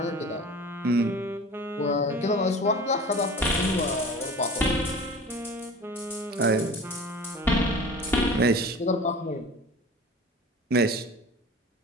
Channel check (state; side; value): normal; both; correlation 0.39